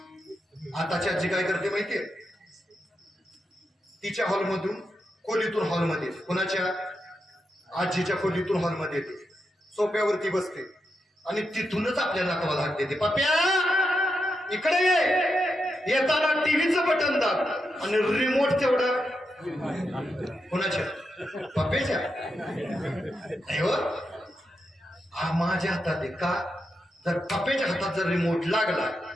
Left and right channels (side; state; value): both; normal; correlation 0.85